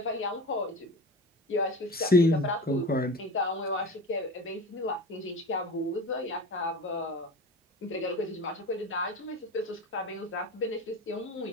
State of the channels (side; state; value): both; normal; correlation 0.32